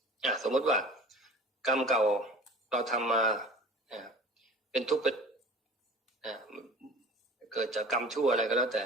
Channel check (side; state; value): both; normal; correlation 0.44